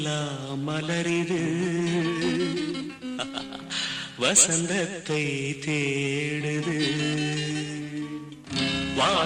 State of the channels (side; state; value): both; identical; correlation 1.00